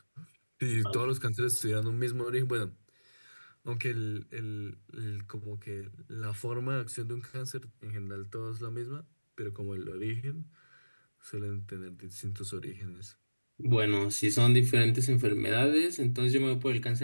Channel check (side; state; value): both; inverted; correlation -1.00